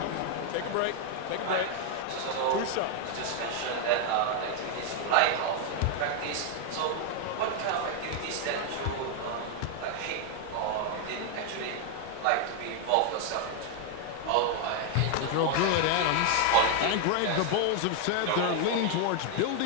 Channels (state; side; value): different; both; correlation 0.00